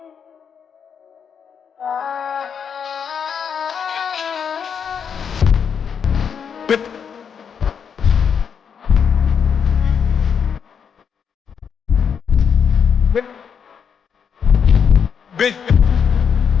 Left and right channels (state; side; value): quieter; right; 7.1 dB